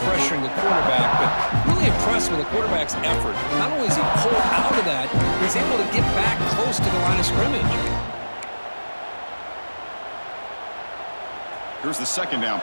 pressuring the quarterback, but really impressed with the quarterback's effort. Not only is he pulled out of that, he's able to get back close to the line of scrimmage. Here's the second down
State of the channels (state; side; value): inverted; both; correlation -1.00